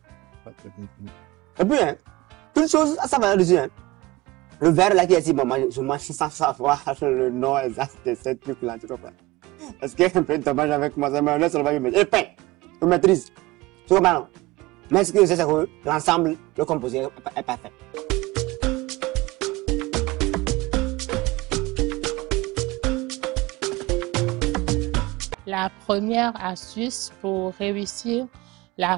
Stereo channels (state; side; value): quieter; left; 20.5 dB